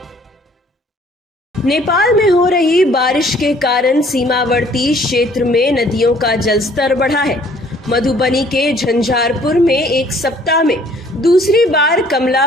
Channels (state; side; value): normal; both; correlation 0.58